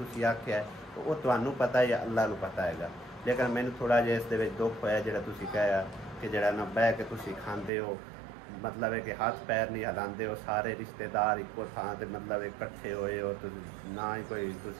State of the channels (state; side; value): drops out; left; at 7.7 s